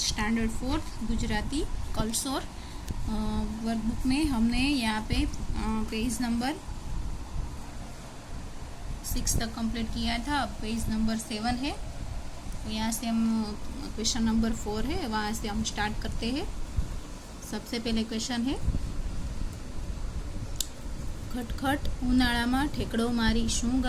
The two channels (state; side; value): identical; both; correlation 1.00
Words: standard 4 Gujarati कलसोर workbook में हमने यहाँ पे पेज नंबर 6 तक कंप्लीट किया था। अब पेज नंबर 7 है, तो यहाँ से हम क्वेश्चन नंबर 4 है, वहाँ से हम स्टार्ट करते हैं। सबसे पहले क्वेश्चन है, खटखट उनाळामां ठेकड़ो मारी शुं